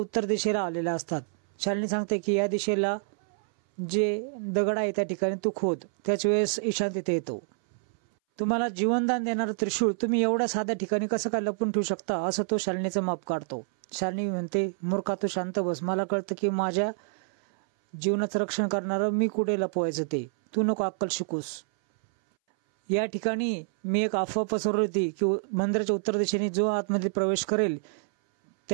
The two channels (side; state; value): left; silent; 60 dB below the other